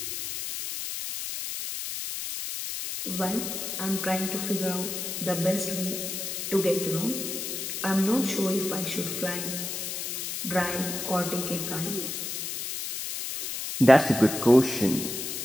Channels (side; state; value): left; noise; hiss, 4 dB below the sound